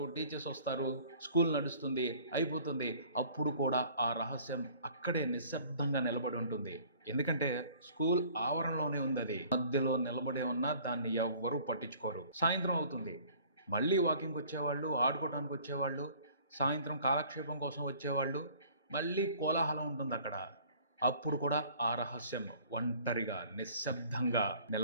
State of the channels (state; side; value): inverted; both; correlation -0.52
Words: టీచర్స్ వస్తారు, స్కూల్ నడుస్తుంది, అయిపోతుంది. అప్పుడు కూడా ఆ రహస్యం అక్కడే నిశ్శబ్దంగా నిలబడి ఉంటుంది. ఎందుకంటే స్కూల్ ఆవరణలోనే ఉంది. అది మధ్యలో నిలబడే ఉన్నా దాన్ని ఎవ్వరూ పట్టించుకోరు. సాయంత్రం అవుతుంది. మళ్ళీ వాకింగ్కి వచ్చేవాళ్ళు, ఆడుకోవడానికి వచ్చేవాళ్ళు, సాయంత్రం కాలక్షేపం కోసం వచ్చేవాళ్ళు, మళ్ళీ కోలాహలం ఉంటుంది అక్కడ. అప్పుడు కూడా ఆ రహస్యం ఒంటరిగా నిశ్శబ్దంగా